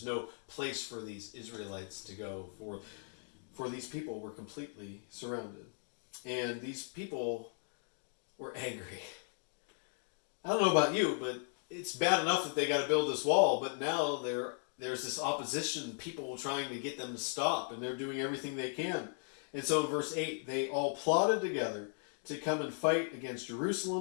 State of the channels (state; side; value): silent; right; 53 dB below the other